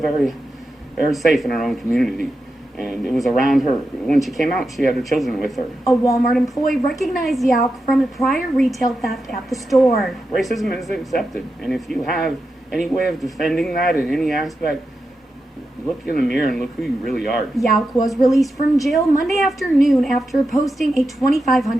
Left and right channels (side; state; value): both; normal; correlation 0.89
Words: very safe in her own community. And it was around her. When she came out, she had her children with her. A Walmart employee recognized Yauk from a prior retail theft at the store. Racism is accepted, and if you have any way of defending that in any aspect, look in the mirror and look who you really are. Yauk was released from jail Monday afternoon after posting a